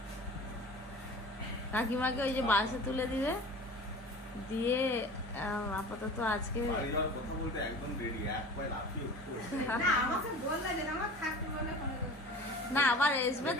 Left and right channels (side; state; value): both; normal; correlation 0.39